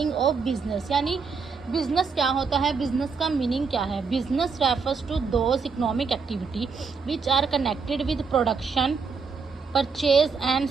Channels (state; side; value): quieter; left; 5.2 dB